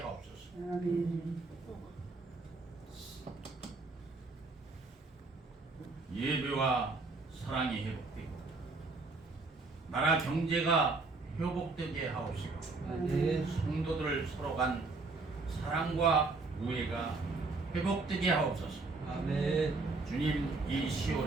아멘. 예배와 사랑이 회복되고 나라 경제가 회복되게 하옵소서. 성도들 서로 간 사랑과 우애가 회복되게 하옵소서. 아멘. 주님, 이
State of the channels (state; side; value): quieter; left; 3.8 dB